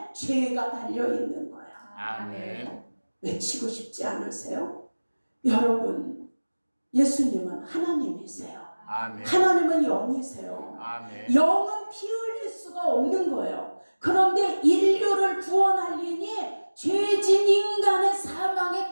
죄가 달려있는 거야. 아멘. 외치고 싶지 않으세요? 여러분, 예수님은 하나님이세요. 아멘. 하나님은 영이세요. 아멘. 영은 피 흘릴 수가 없는 거예요. 그런데 인류를 구원하려니 죄진 인간의 사망의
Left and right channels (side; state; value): both; inverted; correlation -1.00